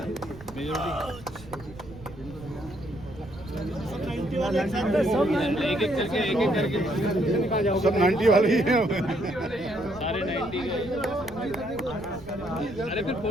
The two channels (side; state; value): right; noise; rumble, 17 dB below the sound